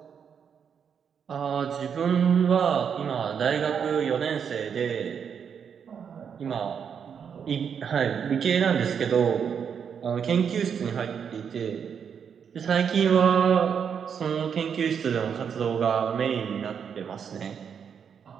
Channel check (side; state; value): left; quieter; 7.3 dB